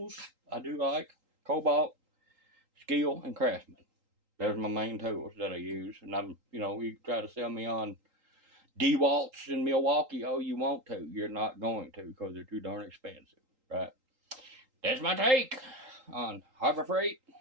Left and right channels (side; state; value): left; late; 3.8 ms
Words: I do like cobalt, Skill, and Craftsman. Those are my main tools that I use. And I'm, you try to sell me on DeWalt's in Milwaukee. Oh, you want to. You're not going to because they're too darn expensive, right? That's my take on Harbor Freight